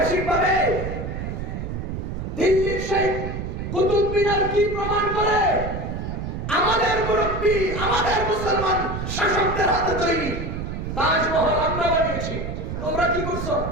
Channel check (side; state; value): right; noise; rumble, 5 dB below the sound